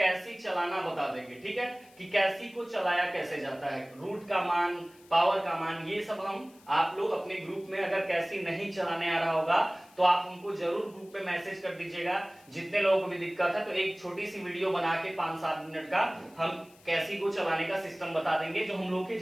चलाना बता देंगे, ठीक है, कि कैसी को चलाया कैसे जाता है, रूट का मान, पावर का मान, ये सब हम आप लोग अपने ग्रुप में अगर कैसी नहीं चलाने आ रहा होगा तो आप हमको जरूर ग्रुप में मैसेज कर दीजिएगा। जितने लोगों को भी दिक्कत है तो एक छोटी सी वीडियो बना के 5-7 मिनट का हम कैसी को चलाने का सिस्टम बता देंगे जो हम लोग की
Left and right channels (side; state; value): left; noise; hiss, 27 dB below the sound